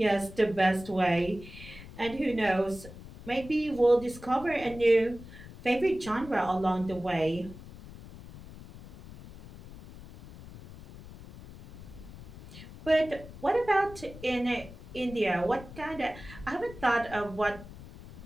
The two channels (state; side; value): noise; left; rumble, 16 dB below the sound